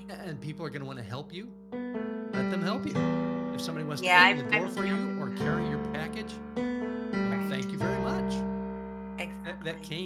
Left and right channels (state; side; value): identical; both; correlation 1.00